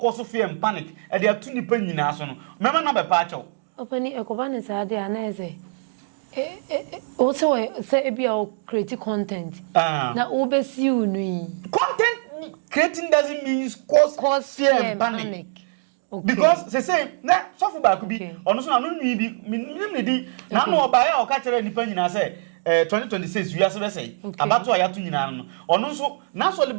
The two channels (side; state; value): left; silent; digital silence